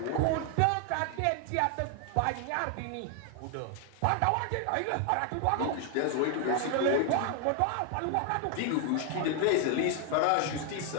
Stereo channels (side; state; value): both; different; correlation 0.00